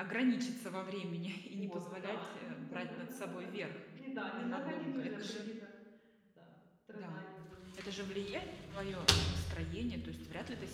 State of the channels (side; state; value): both; identical; correlation 1.00